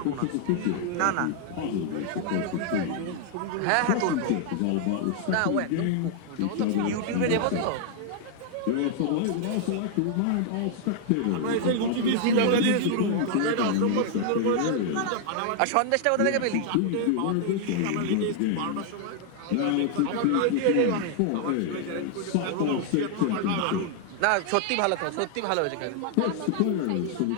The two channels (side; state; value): both; different; correlation 0.00